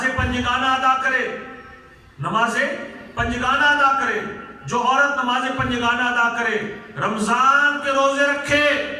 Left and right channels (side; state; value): both; identical; correlation 1.00